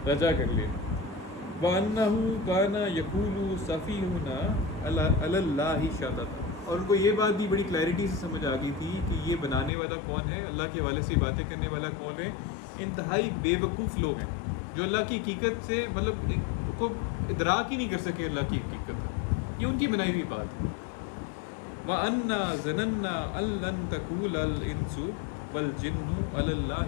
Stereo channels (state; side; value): drops out; right; at 9.7 s